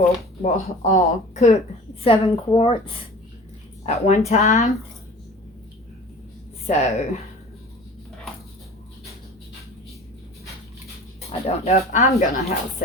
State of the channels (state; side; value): normal; both; correlation 0.41